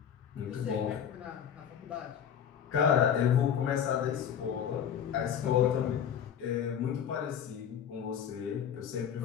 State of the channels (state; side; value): quieter; right; 8.7 dB